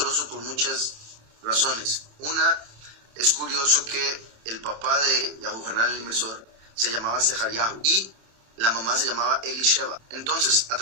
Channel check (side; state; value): left; late; 27 ms